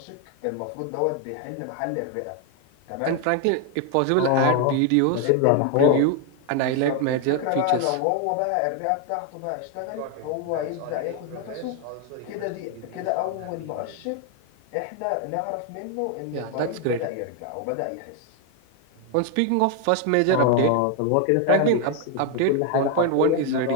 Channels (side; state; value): both; different; correlation 0.00